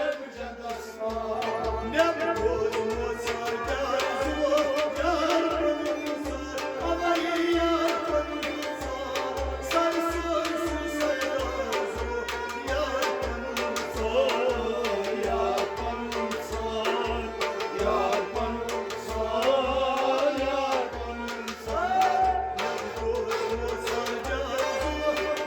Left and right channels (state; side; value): identical; both; correlation 1.00